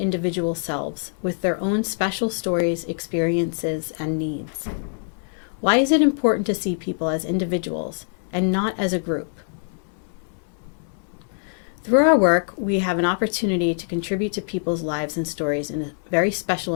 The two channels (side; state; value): right; silent; 60 dB below the other